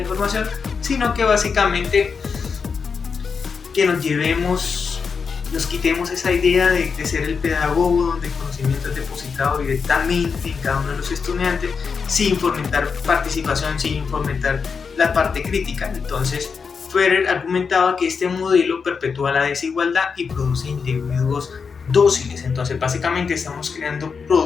sino que básicamente que nos quitemos esa idea de ser el pedagogo donde el conocimiento es depositado directamente en cada uno de los estudiantes sin fomentar participación, sin fomentar la parte crítica. Entonces, Freire argumentaba que este modelo perpetúa la desigualdad y produce individuos dóciles. Entonces, básicamente estamos creando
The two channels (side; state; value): right; quieter; 5.6 dB